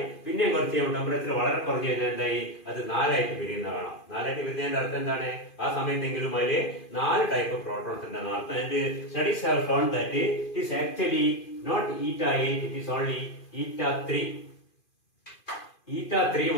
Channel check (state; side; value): late; right; 2.5 ms